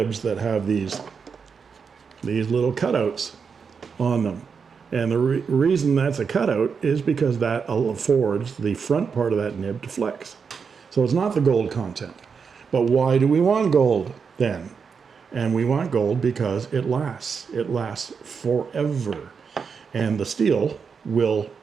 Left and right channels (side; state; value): left; quieter; 5.9 dB